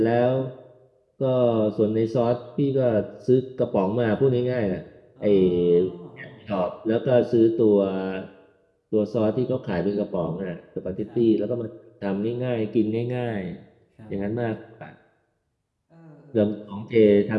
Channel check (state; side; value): identical; both; correlation 1.00